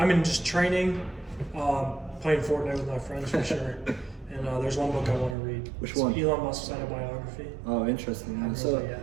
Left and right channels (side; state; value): left; drops out; at 5.4 s